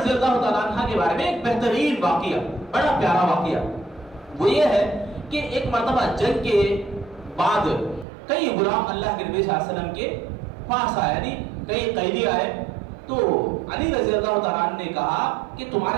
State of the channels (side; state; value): left; drops out; at 8.1 s